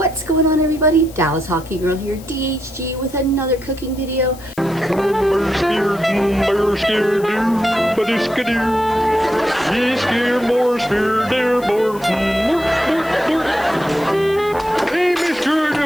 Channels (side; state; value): left; noise; hiss, 21 dB below the sound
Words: What's going on, everybody? Dallas Hockey Girl here, DHG, with another cooking video.